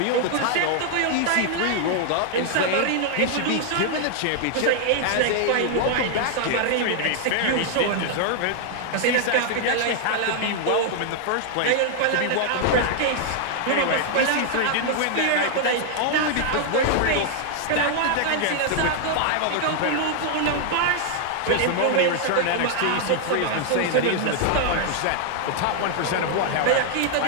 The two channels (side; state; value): both; different; correlation 0.00